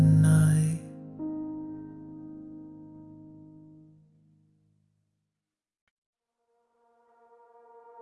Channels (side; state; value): both; identical; correlation 1.00